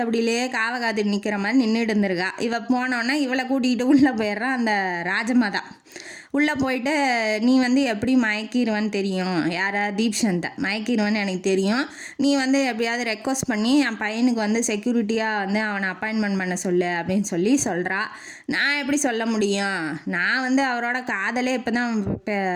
காவை காத்துட்டு நிற்கிற மாதிரி நின்றுட்டு இருந்திருக்கா. இவள் போனோன்னே இவளை கூட்டிகிட்டு உள்ளே போயிடுறான் அந்த ராஜமாதா. உள்ளே போயிட்டு நீ வந்து எப்படி மயக்கிடுவேன்னு தெரியும், யாரா தீப்சந்தை மயக்கிடுவேன்னு எனக்கு தெரியும், நீ வந்து எப்படியாவது ரெக்வஸ்ட் பண்ணி என் பையனுக்கு வந்து செக்யூரிட்டியாக வந்து அவனை அப்பாயின்மெண்ட் பண்ண சொல்லு அப்படின்னு சொல்லி சொல்கிறா. நான் எப்படி சொல்ல முடியும், நான் வந்து அவரோட காதலே இப்போ தான்,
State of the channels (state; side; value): identical; both; correlation 1.00